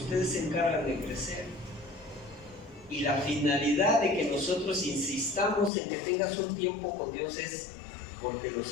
se encargan de crecer. Y la finalidad de que nosotros insistamos en que tengas un tiempo con Dios es porque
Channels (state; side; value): drops out; right; at 5.7 s